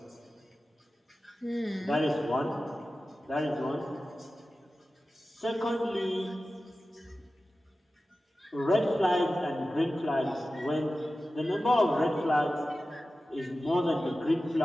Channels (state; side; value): normal; both; correlation 0.95